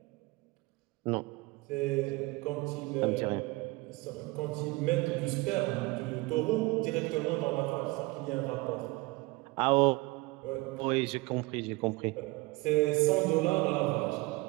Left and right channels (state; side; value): quieter; left; 23.1 dB